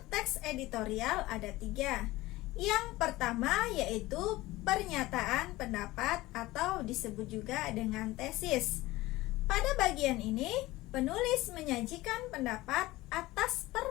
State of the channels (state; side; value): quieter; right; 18.7 dB